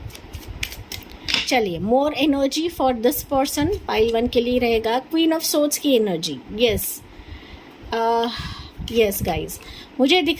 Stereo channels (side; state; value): both; identical; correlation 1.00